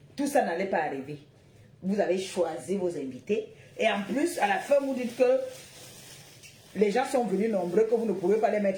Tout ça n'allait pas arriver. Vous avez choisi vos invités. Et en plus, à la fin, vous dites que les gens sont venus nombreux, que vous ne pouvez pas les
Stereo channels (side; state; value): both; identical; correlation 1.00